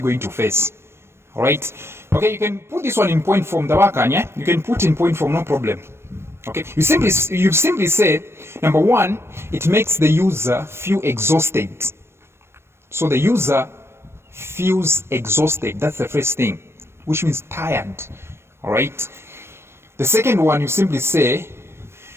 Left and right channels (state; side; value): late; left; 0.12 ms